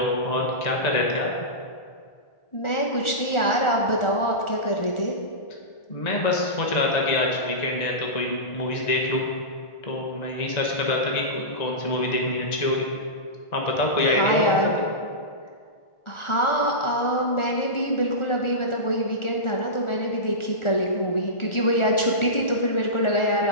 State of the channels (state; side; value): late; right; 1.4 ms